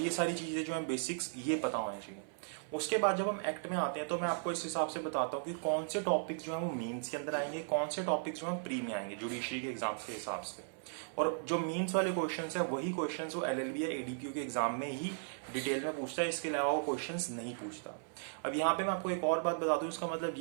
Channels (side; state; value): left; silent; 53 dB below the other